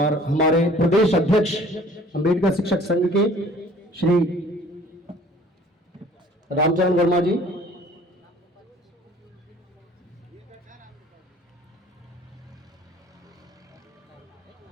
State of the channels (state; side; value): normal; both; correlation 0.52